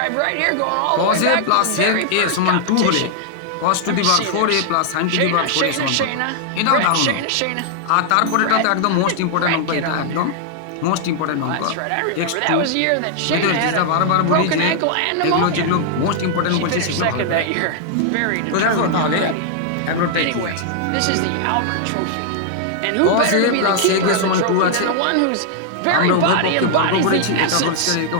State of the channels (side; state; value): both; different; correlation 0.00